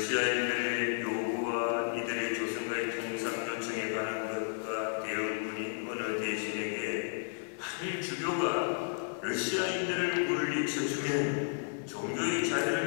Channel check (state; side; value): silent; right; 56 dB below the other